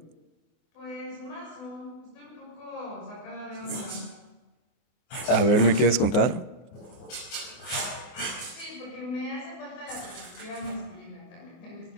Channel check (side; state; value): right; late; 24 ms